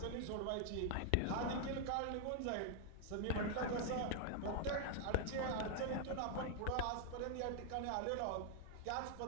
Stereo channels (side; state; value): both; different; correlation 0.00